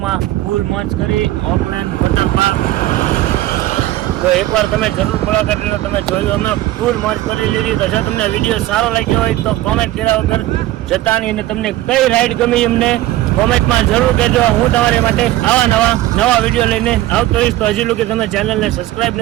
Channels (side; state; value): left; quieter; 15.5 dB